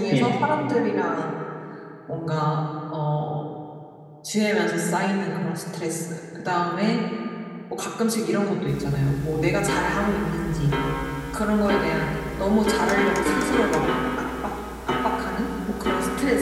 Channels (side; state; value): both; identical; correlation 1.00